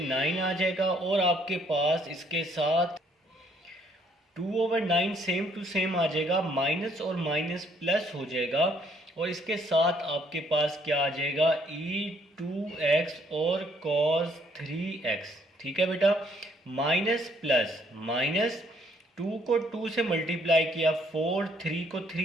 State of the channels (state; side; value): normal; both; correlation 0.65